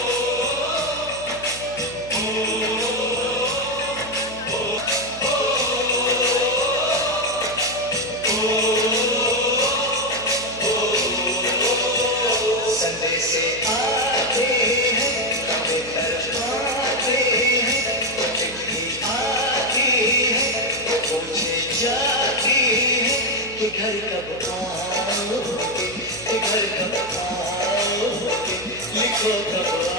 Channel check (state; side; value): noise; right; hum, 17 dB below the sound